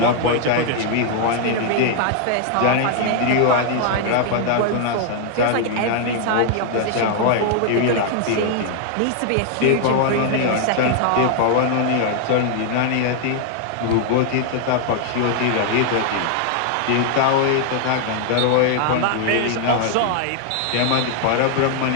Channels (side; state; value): both; different; correlation 0.00